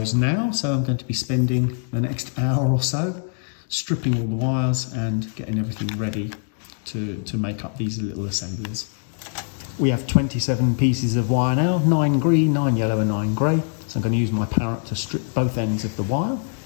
now. So I'm going to be spending the next hour or so stripping all the wires and getting everything ready to make up these little assemblies. We have 27 pieces of wire now, 9 green, 9 yellow and 9 grey. So I'm going to use my parrot to strip both ends of the wire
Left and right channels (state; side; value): silent; right; digital silence